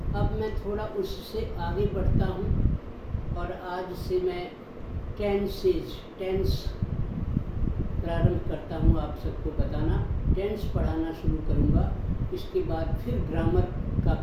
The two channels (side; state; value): both; identical; correlation 1.00